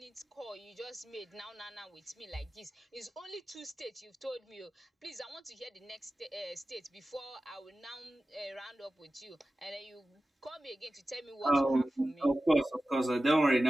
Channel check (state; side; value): normal; both; correlation 0.95